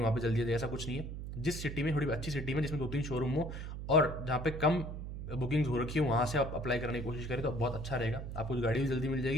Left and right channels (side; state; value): right; noise; hum, 7 dB below the sound